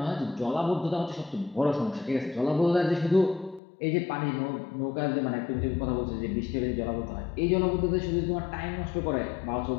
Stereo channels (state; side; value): drops out; right; at 3.6 s